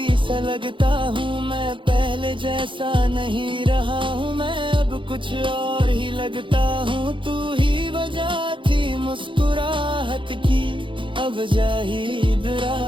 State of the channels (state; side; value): late; left; 0.24 ms